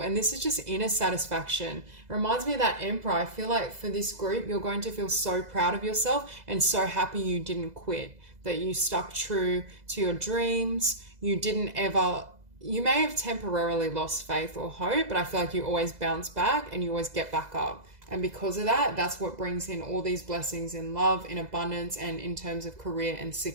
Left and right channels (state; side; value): late; left; 2.0 ms